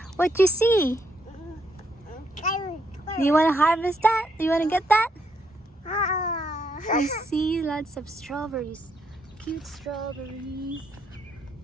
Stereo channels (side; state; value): both; normal; correlation 0.75